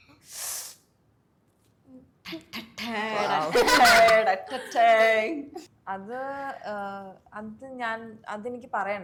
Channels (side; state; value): both; identical; correlation 1.00